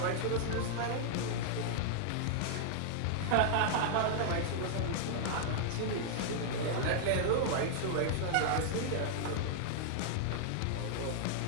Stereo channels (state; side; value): different; both; correlation -0.01